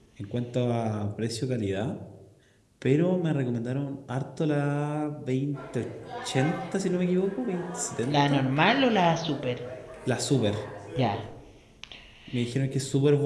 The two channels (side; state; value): both; identical; correlation 1.00